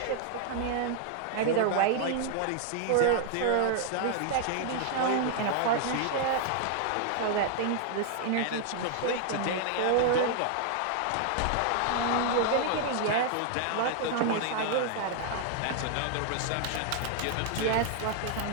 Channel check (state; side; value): different; both; correlation 0.00